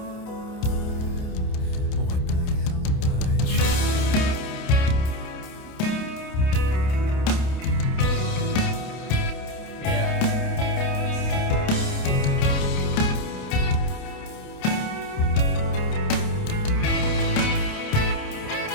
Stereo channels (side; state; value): right; late; 28 ms